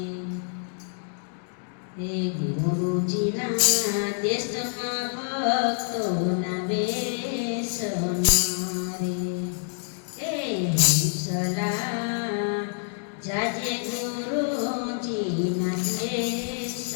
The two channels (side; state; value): right; silent; digital silence